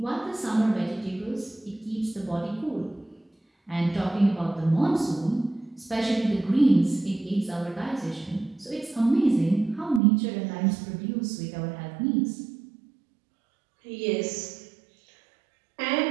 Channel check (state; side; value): drops out; left; at 10.0 s